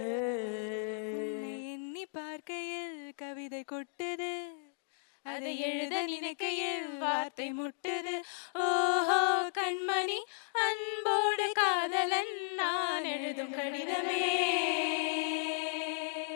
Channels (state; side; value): silent; right; digital silence